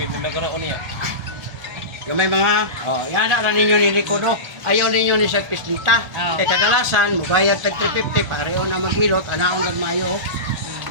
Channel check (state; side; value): late; left; 1.4 ms